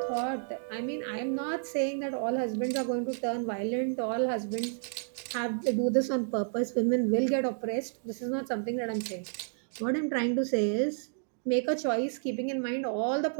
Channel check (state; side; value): silent; left; digital silence